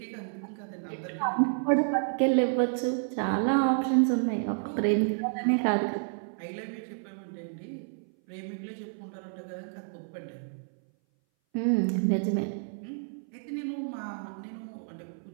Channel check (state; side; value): silent; left; 58 dB below the other